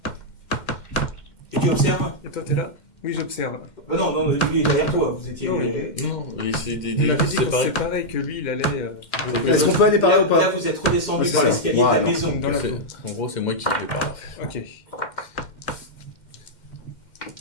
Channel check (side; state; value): right; late; 2.1 ms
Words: Et tu observes? Et toi, t'es là? Oui, j'observe. Non, lui est derrière toi, vous étiez... Non, Non, et c'était Il m'avait dit qu'on se séparé. séparait, que lui, il allait Est-ce qu'on peut aller par là ou Là, pas? vous êtes redescendu C'est par ça. l'escalier de la Voilà. maison. dans la cour. En gros, c'est moi qui vais par là. Ok.